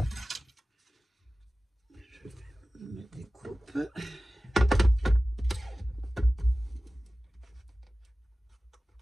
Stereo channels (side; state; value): both; normal; correlation 0.96